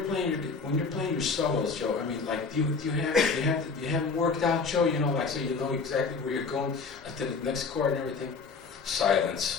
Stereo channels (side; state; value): right; quieter; 4.7 dB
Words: playing your solos, Joe, I mean, like, do you have them worked out, Joe? You know, like, so you know exactly where you're going to the next chord and everything.